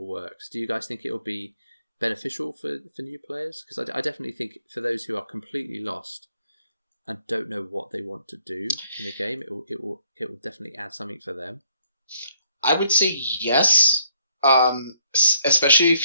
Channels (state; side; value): inverted; both; correlation -0.68